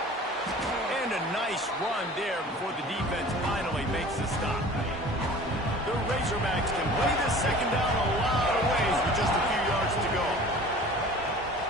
And a nice run there before the defense finally makes the stop. The Razorbacks can play this second down a lot of ways with just a few yards to go.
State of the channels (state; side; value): normal; both; correlation 0.44